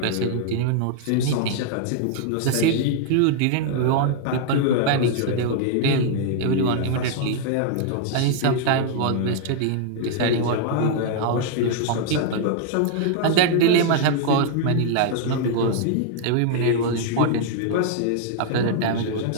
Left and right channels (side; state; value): both; different; correlation 0.00